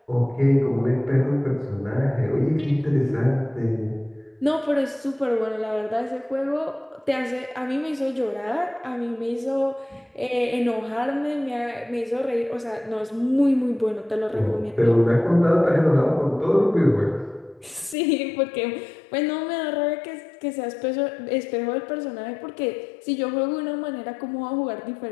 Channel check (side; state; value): right; drops out; at 17.9 s